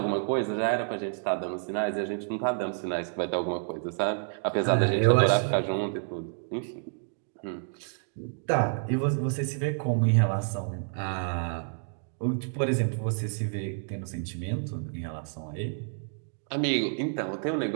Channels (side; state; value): left; silent; digital silence